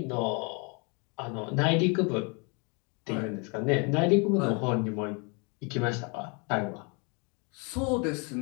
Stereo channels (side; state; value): right; quieter; 33.0 dB